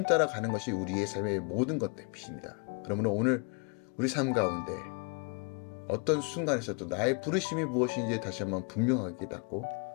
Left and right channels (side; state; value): right; quieter; 35.7 dB